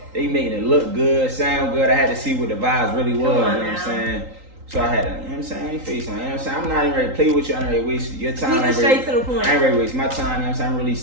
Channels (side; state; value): left; late; 3.8 ms